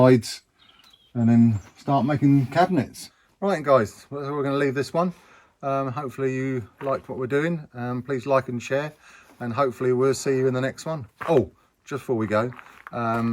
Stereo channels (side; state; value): both; identical; correlation 1.00